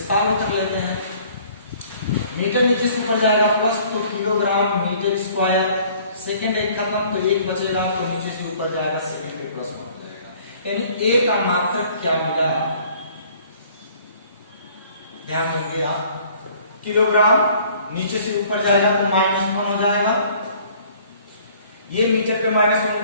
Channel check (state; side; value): inverted; both; correlation -0.55